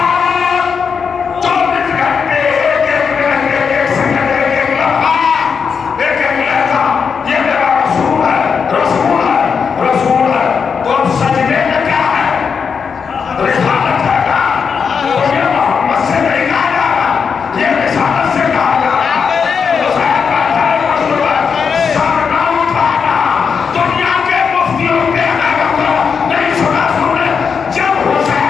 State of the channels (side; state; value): right; quieter; 6.1 dB